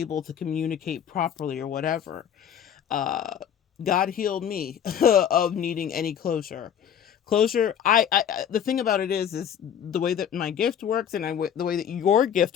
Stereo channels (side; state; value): right; quieter; 8.8 dB